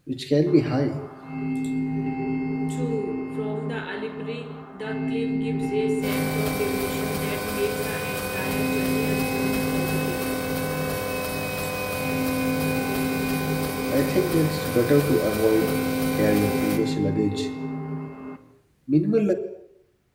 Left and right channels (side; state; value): both; identical; correlation 1.00